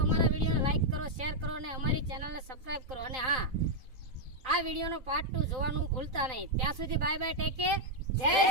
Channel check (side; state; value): left; late; 3.9 ms